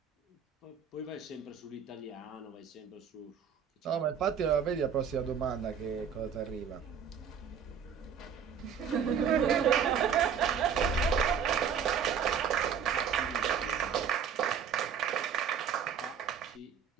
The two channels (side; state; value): left; quieter; 7.4 dB